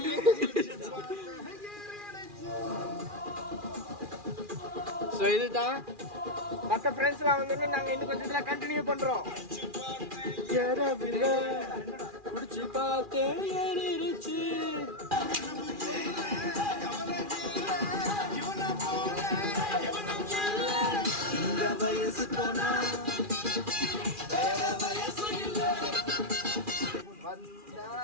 ஸோ இதுதான் மற்ற ஃப்ரெண்ட்ஸ்லாம் வந்து நாங்கள் இன்னும் கொஞ்சம் இதெல்லாம் கண்டினியூ பண்ணுறோம். குடிச்சு பார்த்தேன் ஏறிடுச்சு. இந்த வயசு போனா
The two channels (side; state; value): left; late; 2.4 ms